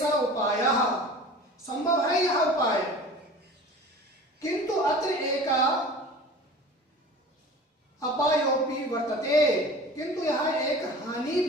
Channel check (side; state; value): both; normal; correlation 0.40